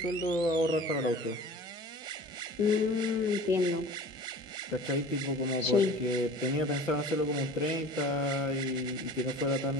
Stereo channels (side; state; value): both; normal; correlation 0.41